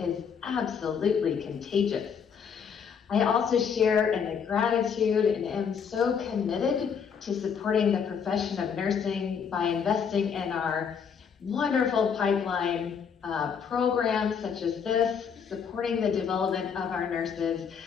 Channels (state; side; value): quieter; right; 6.8 dB